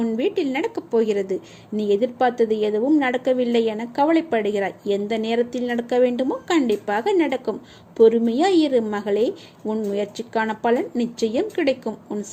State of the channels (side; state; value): both; identical; correlation 1.00